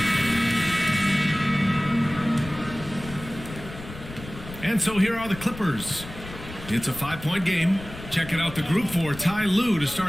And so here are the Clippers. It's a 5-point game. Checking out the group for Ty Lue to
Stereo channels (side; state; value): left; noise; rumble, 13 dB below the sound